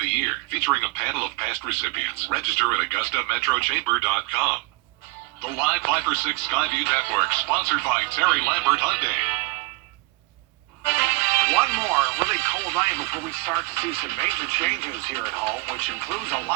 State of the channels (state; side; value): quieter; left; 25.3 dB